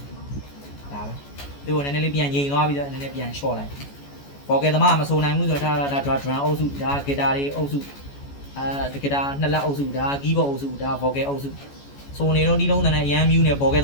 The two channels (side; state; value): right; late; 14 ms